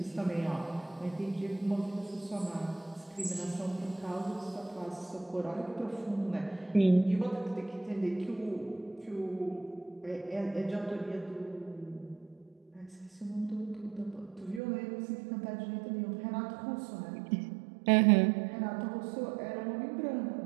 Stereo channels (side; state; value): left; drops out; at 14.6 s